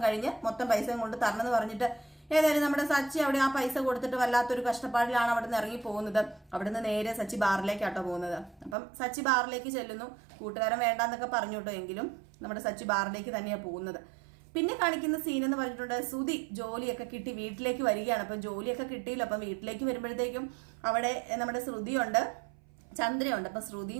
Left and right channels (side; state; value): left; drops out; at 8.8 s